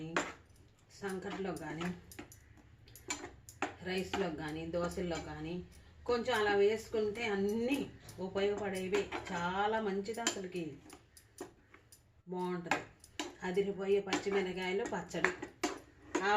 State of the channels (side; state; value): both; identical; correlation 1.00